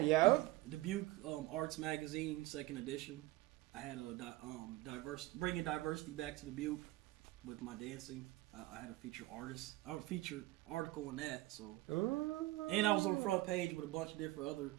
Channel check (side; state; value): left; quieter; 18.5 dB